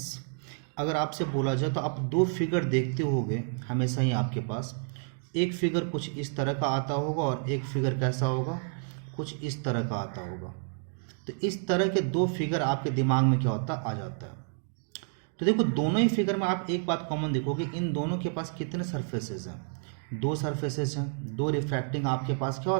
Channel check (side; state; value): left; silent; 58 dB below the other